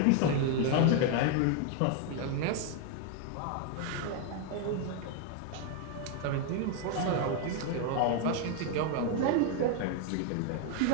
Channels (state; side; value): different; both; correlation 0.01